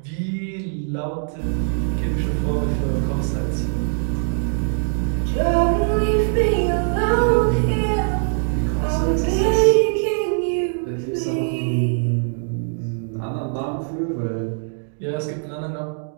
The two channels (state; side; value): silent; left; digital silence